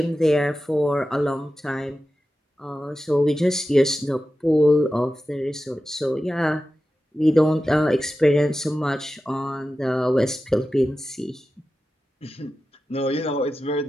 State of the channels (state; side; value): normal; both; correlation 0.93